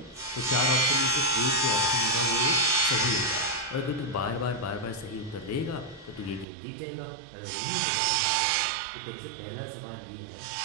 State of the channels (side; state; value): left; drops out; at 6.5 s